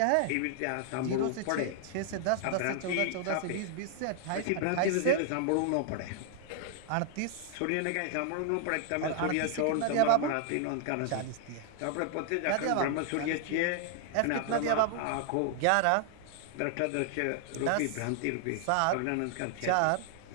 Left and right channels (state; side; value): different; both; correlation 0.00